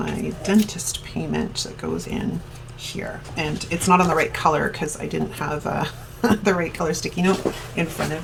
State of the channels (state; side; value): identical; both; correlation 1.00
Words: dentist payment that goes in here. And it's not on the right color because I didn't have the right color sticky note in front of